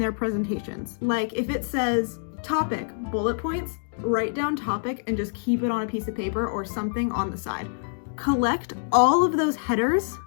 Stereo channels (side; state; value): right; silent; digital silence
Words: presentations. Like if it says topic, bullet points, write down topic and just keep it on a piece of paper or something on the side. Collect all of those headers,